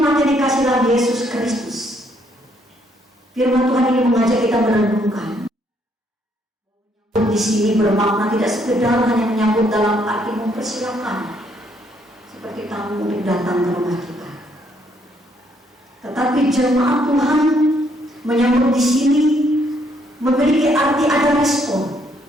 yang dikasih dalam Yesus Kristus, firman Tuhan ini mengajak kita merenungkan. Di sini bermakna tidak sekedar hanya menyambut dalam arti mempersilakan seperti tamu untuk datang ke rumah kita, tetapi jemaat Tuhan menyambut di sini memiliki arti ada respon.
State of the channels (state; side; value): normal; both; correlation 0.70